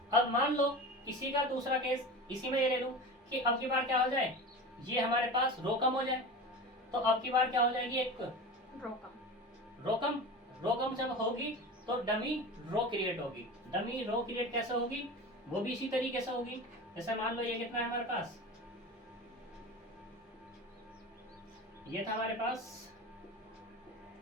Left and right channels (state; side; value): normal; both; correlation 0.31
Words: अब मान लो इसी का दूसरा केस, इसी में ये ले लूं कि अब की बार क्या हो जाए, ये हमारे पास रो कम हो जाए, तो अब की बार क्या हो जाएगी, एक रो कम जब होगी तो डमी रो क्रिएट होगी। डमी रो क्रिएट कैसे होगी, वो भी इसी तरीके से होगी। जैसे मान लो ये कितना है हमारे पास, ये था हमारे पास